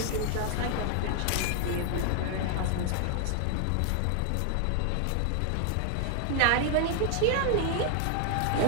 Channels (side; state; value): both; different; correlation 0.00